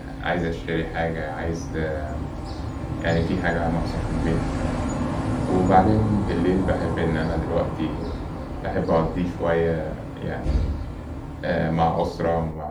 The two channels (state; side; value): identical; both; correlation 1.00